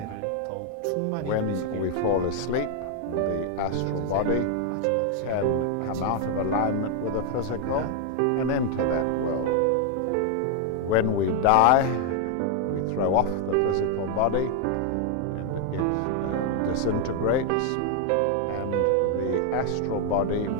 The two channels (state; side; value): different; both; correlation 0.00